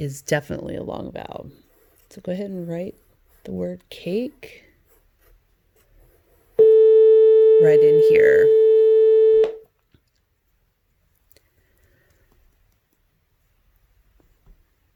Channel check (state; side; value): identical; both; correlation 1.00